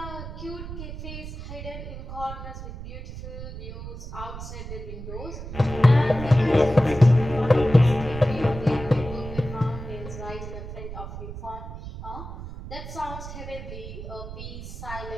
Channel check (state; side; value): noise; right; rumble, 10 dB below the sound